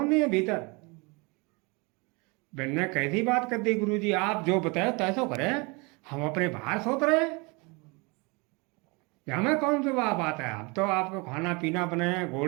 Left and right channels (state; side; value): quieter; left; 28.5 dB